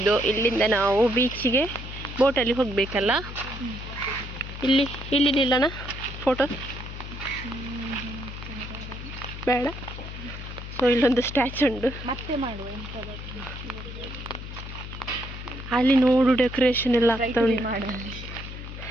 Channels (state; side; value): noise; left; hum, 10 dB below the sound